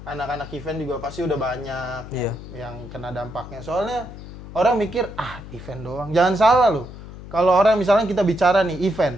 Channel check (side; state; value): left; noise; hum, 14 dB below the sound